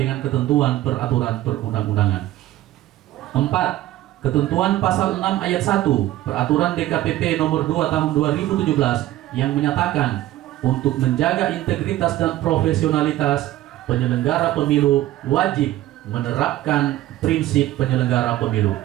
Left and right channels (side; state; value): left; quieter; 14.8 dB